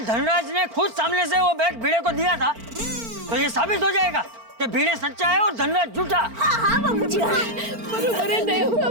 धनराज ने खुद सामने से वो बैग भिड़े को दिया था, तो ये साबित हो जाएगा कि भिड़े सच्चा है और धनराज झूठा। हाँ हाँ बाबूजी, हाँ। बरोबर है दया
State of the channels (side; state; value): left; late; 4.4 ms